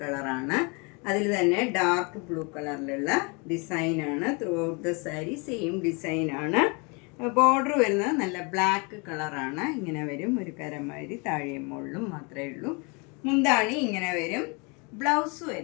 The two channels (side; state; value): right; quieter; 31.1 dB